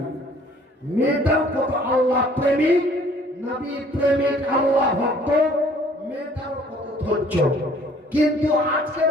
মেয়েটাও কত আল্লাহ প্রেমিক, নবী প্রেমিক, আল্লাহ ভক্ত, মেয়েটাও কত ধৈর্য। কিন্তু আজকে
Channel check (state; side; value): normal; both; correlation 0.56